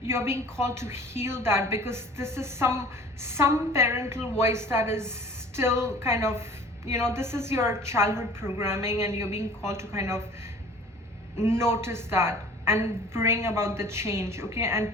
being called to heal that, because this is some parental voice that is still kind of, you know, this is your childhood programming, and you're being called to kind of notice that and bring about the change. Okay,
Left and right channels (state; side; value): normal; both; correlation 0.47